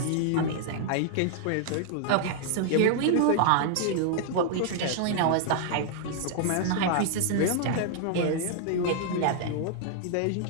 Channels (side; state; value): both; different; correlation -0.01